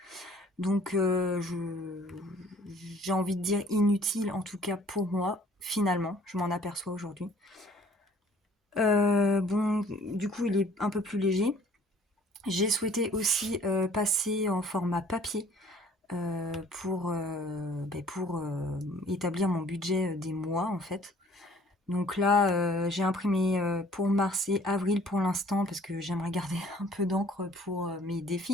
Donc j'ai envie de dire inutile, en tout cas pour moi, finalement, je m'en aperçois aujourd'hui. Bon, du coup, il est un peu plus léger. J'ai souhaité aussi passer en format papier pour établir mon budget des mois en fait. Donc là, j'ai imprimé pour mars et avril pour l'instant parce que j'aimerais garder un peu d'encre pour mes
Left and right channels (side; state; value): both; normal; correlation 0.55